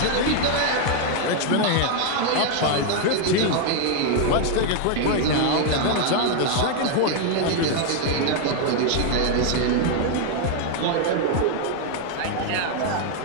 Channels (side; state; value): both; different; correlation 0.00